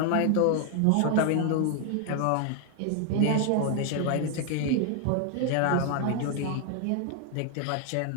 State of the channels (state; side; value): different; both; correlation 0.00